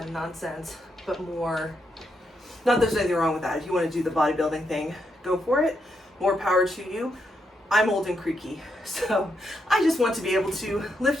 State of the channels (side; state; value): both; normal; correlation 0.80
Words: of nonsense, but more, not that there's anything wrong with that. If you want to do the bodybuilding thing, go for it. More power to you. I'm old and creaky, so I just want to be able to